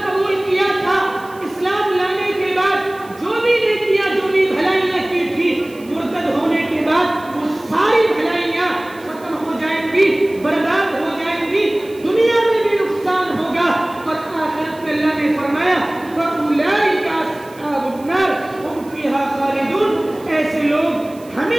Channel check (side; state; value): right; noise; hiss, 25 dB below the sound